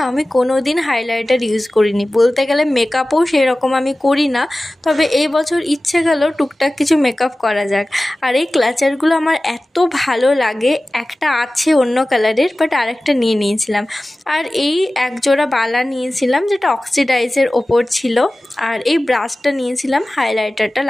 কোনো দিন হাইলাইটার ইউজ করিনি, বলতে গেলে মেকআপও সেরকম আমি করি না। তবে এই বছর ইচ্ছে গেল টুকটাক কিছু মেকআপ করা যাক। আর এই ক্লাচারগুলো আমার এত ভালো লাগে। একটা আছে অন্য কালারের, বাট আরেকটা নিয়ে নিয়েছিলাম। আর এই এক জোড়া বালা নিয়েছিলাম যেটা অক্সিডাইজের ওপর ছিল। আর এই ব্রাশটা নিয়েছিলাম হাইলাইটারটা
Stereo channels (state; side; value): normal; both; correlation 0.96